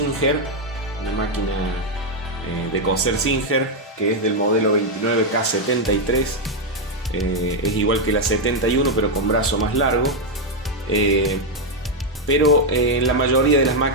una máquina de coser Singer, que es del modelo 29K73. Es igual que la 71 pero con brazo más largo, pero en la mayoría de las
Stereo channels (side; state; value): both; normal; correlation 0.01